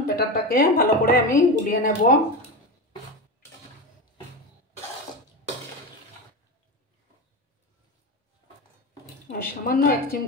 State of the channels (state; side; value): normal; both; correlation 0.21